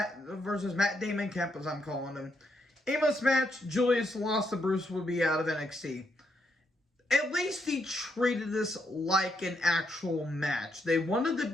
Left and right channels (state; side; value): normal; both; correlation 0.78